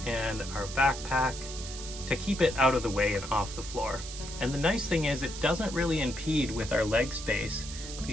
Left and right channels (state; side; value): noise; right; hiss, 10 dB below the sound